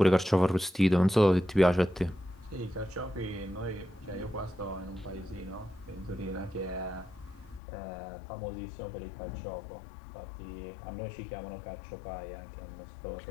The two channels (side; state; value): right; drops out; at 7.6 s